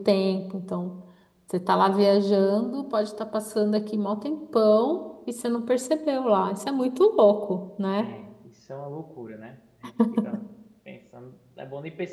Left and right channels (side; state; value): both; identical; correlation 1.00